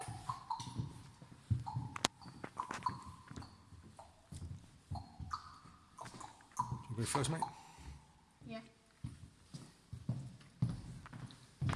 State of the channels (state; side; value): identical; both; correlation 1.00